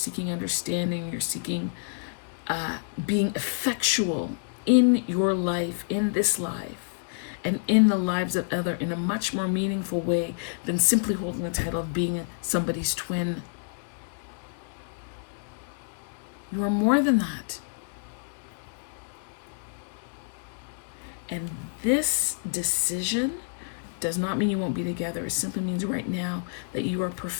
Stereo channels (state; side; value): silent; right; 59 dB below the other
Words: understanding, you're seeking being effectual in your life, in this life, and in the lives of others in a much more meaningful way than simply holding the title of being somebody's twin. You are more than that. And this decision does not mean you won't be together. It simply means right now that you are